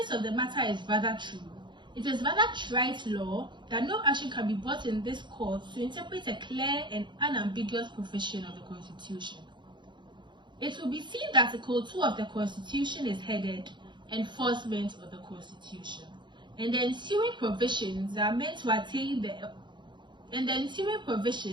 of the matter is rather true. It is rather trite law that no action can be brought in this court to interpret a clear and unambiguous provision of the Constitution. It will be seen that Article 2 of the Constitution is headed Enforcement of the Constitution, and the ensuing provisions are meant to attain the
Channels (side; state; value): left; late; 0.23 ms